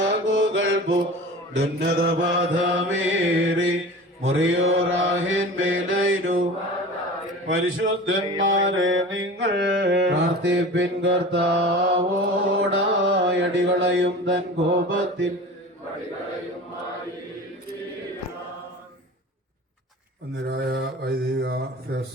ഉന്നതപാതമേറി മുറിയോറാഹിൻ മേലൈനു പരിശുദ്ധന്മാരെ നിങ്ങൾ പ്രാർത്ഥിപ്പിൻ കർത്താവോടായടികളയും തൻ കോപത്തിൽ അന്നരായ വൈദിക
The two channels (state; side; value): normal; both; correlation 0.36